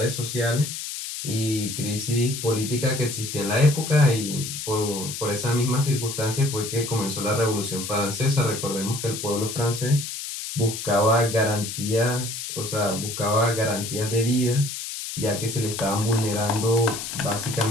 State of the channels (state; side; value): noise; left; hiss, 7 dB below the sound